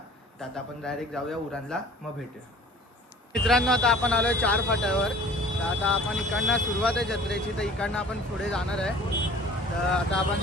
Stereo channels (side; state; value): both; normal; correlation 0.47